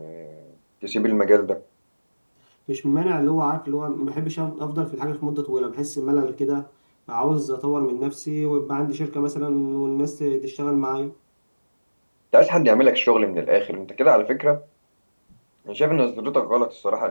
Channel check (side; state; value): both; inverted; correlation -1.00